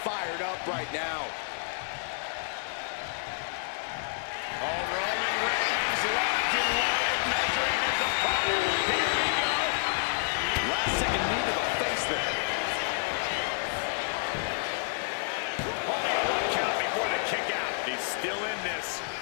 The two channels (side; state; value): right; silent; 58 dB below the other